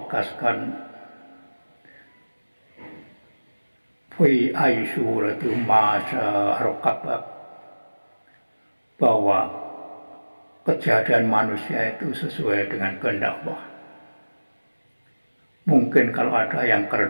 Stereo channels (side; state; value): both; inverted; correlation -1.00